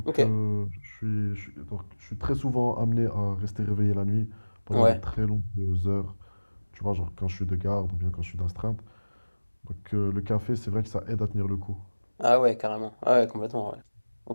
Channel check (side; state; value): both; inverted; correlation -1.00